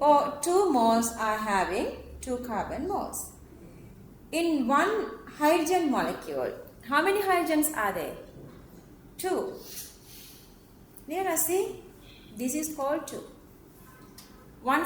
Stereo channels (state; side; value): identical; both; correlation 1.00